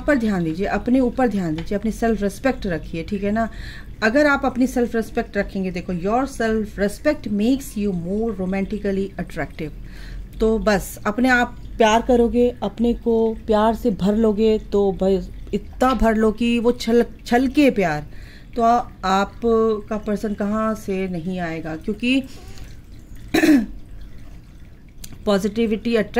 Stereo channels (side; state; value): both; identical; correlation 1.00